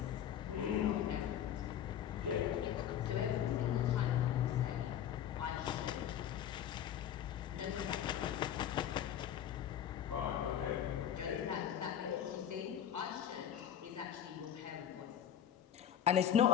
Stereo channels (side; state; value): right; quieter; 10.0 dB